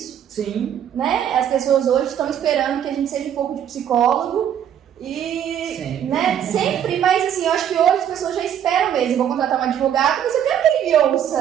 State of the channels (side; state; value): left; quieter; 9.6 dB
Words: Sim. Né? As pessoas hoje estão esperando que a gente seja um pouco de psicólogo e, sempre. Né? Sempre, mas assim, eu acho que hoje as pessoas já esperam mesmo. Vou contratar um advogado, mas eu quero que ele me